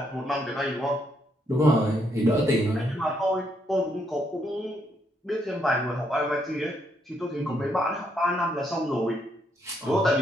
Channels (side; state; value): both; normal; correlation 0.75